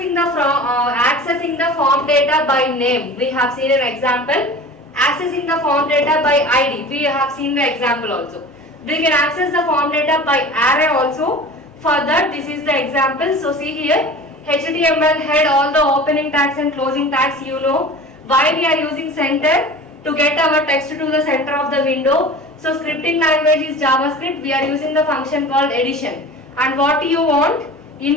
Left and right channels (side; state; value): both; normal; correlation 0.38